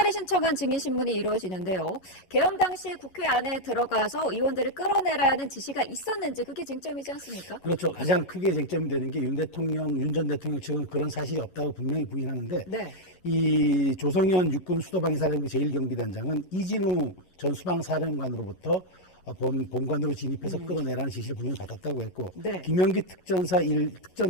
신청한 증인신문이 이루어지는데요. 개헌 당시 국회 안에 들어가서 의원들을 끌어내라는 지시가 있었는지 그게 쟁점이지 않습니까? 그렇죠. 가장 크게 쟁점이 되는 게 윤 전 대통령 측은 그런 사실이 없다고 분명히 부인하는데 네. 이 조성현 육군 수도방위사령부 제1경비단장은 이진우 전 수방사령관으로부터 본관으로 진입해서 끌어내라는 지시를 분명히 받았다고 했고 네. 김영기 특전사 1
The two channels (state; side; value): late; right; 11 ms